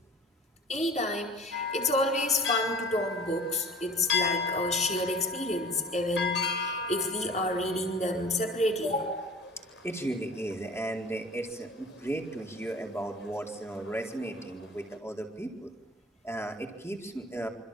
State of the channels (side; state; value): both; normal; correlation 0.44